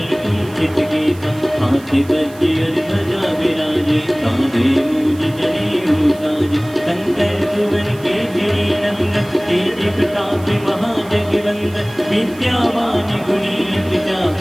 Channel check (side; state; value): right; noise; hiss, 23 dB below the sound